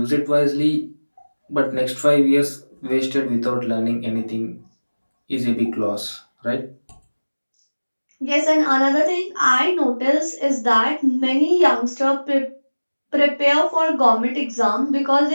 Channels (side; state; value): both; inverted; correlation -1.00